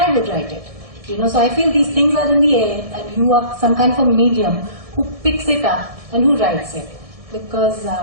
would write it. So I feel these things are in the air, and you are some kind of a medium who picks it up and who writes it. Because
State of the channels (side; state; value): left; late; 1.7 ms